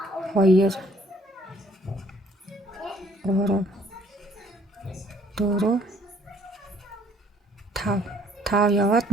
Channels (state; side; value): normal; both; correlation 0.61